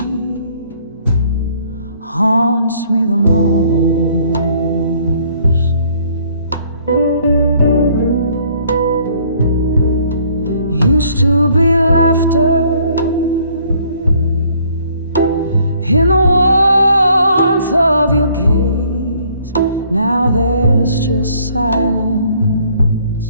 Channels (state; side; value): inverted; both; correlation -0.62